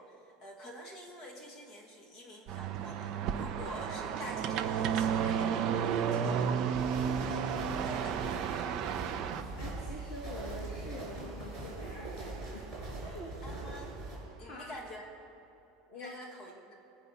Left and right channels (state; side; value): quieter; left; 6.1 dB